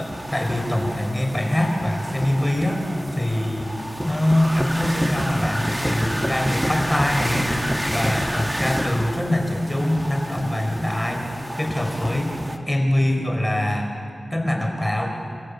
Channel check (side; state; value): both; normal; correlation 0.98